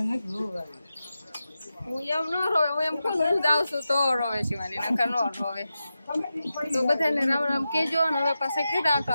હું એમ ન રોવે. હું એમ કહું હું જાઉં છું તો રોવે શિવાની નકર ન રોવે. તો બધાને રામ રામ કેજો ને હવે પાસે કીધા તો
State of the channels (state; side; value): inverted; both; correlation -0.91